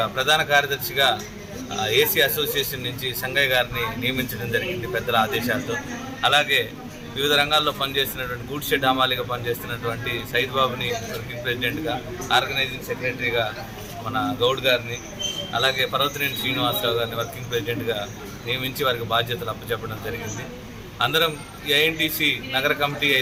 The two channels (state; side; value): identical; both; correlation 1.00